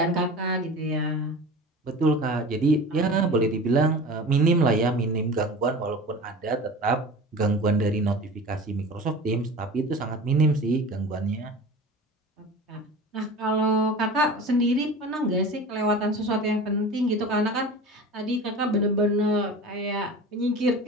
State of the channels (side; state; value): both; normal; correlation 0.36